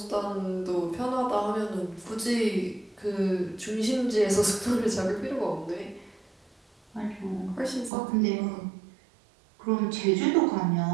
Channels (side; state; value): left; drops out; at 7.9 s